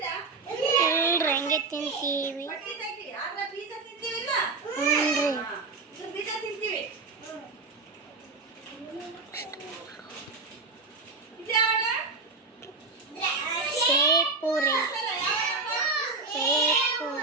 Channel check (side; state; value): left; quieter; 3.9 dB